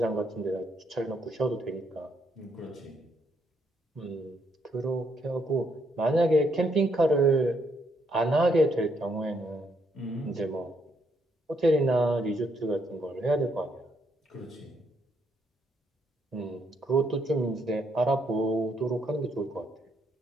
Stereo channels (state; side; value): normal; both; correlation 0.74